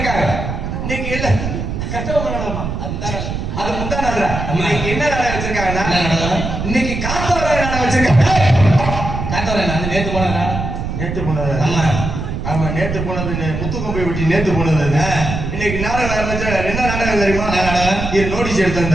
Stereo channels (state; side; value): noise; right; rumble, 4 dB below the sound